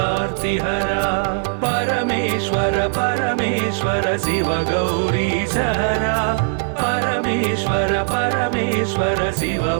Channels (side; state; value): left; silent; digital silence